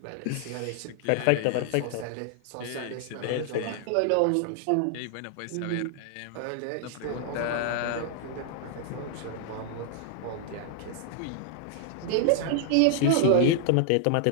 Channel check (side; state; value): both; different; correlation 0.00